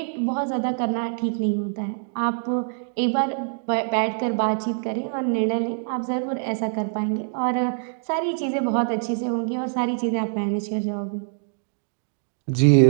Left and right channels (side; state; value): left; silent; digital silence